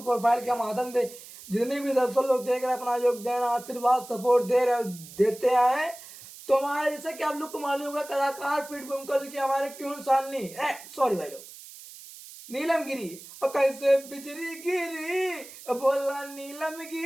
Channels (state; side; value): noise; right; hiss, 17 dB below the sound